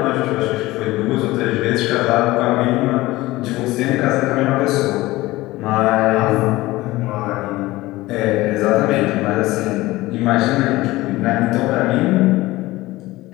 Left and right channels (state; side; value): quieter; right; 18.8 dB